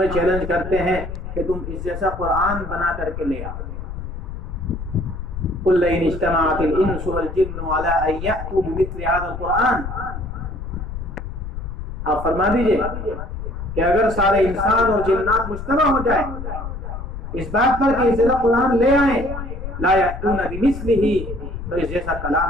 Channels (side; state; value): left; noise; rumble, 8 dB below the sound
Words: چیلنج کرتے ہیں کہ تم اس جیسا قرآن بنا کر کے لے آؤ۔ قُلْ لَئِنِ اجْتَمَعَتِ الْإِنسُ وَالْجِنُّ عَلَىٰ أَن يَأْتُوا بِمِثْلِ هَٰذَا الْقُرْآنِ، آپ فرما دیجئے کہ اگر سارے انسان اور جنات مجتمع ہو جائیں اس بات پر کہ اس جیسا قرآن لے آئیں، لَا يَأْتُونَ بِمِثْلِهِ، تو اس جیسا